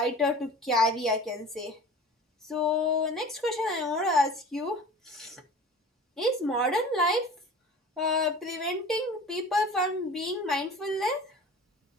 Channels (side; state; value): both; normal; correlation 0.40